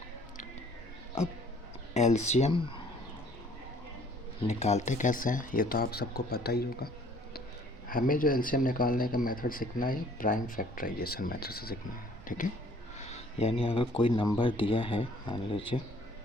अब एलसीएम निकालते कैसे हैं ये तो आप सबको पता ही होगा। हमें जो एलसीएम निकालने का मेथड सीखना है प्राइम फैक्टराइजेशन मेथड से सीखना है, ठीक है? यानी अगर कोई नंबर दिया है, मान लीजिए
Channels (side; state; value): both; normal; correlation 0.57